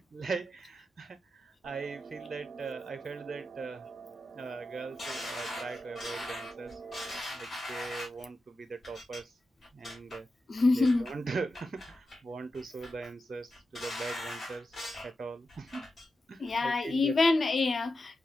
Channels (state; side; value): normal; both; correlation 0.90